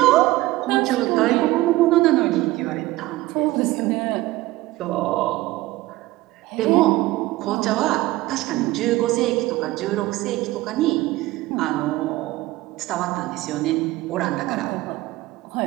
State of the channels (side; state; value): left; quieter; 18.1 dB